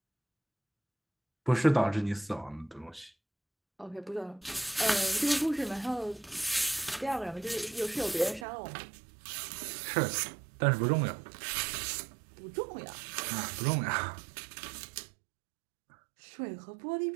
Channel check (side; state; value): left; drops out; at 8.5 s